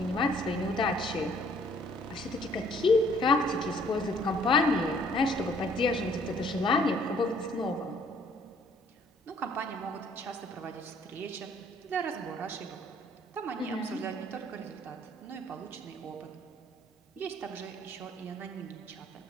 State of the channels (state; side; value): normal; both; correlation 0.60